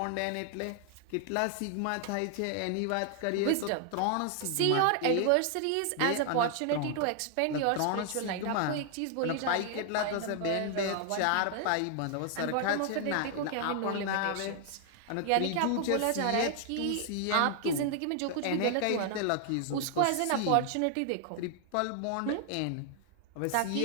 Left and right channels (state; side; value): different; both; correlation 0.00